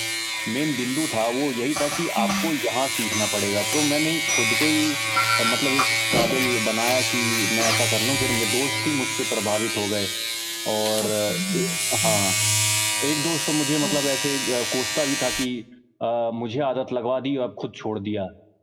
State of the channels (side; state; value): both; identical; correlation 1.00